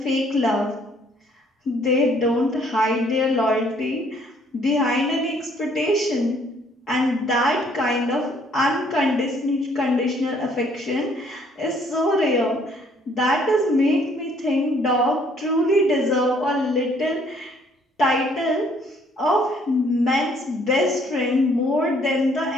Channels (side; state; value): both; normal; correlation 0.63